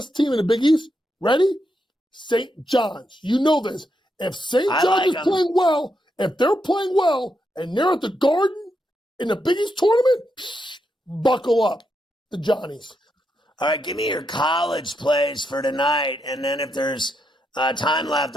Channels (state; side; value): normal; both; correlation 0.82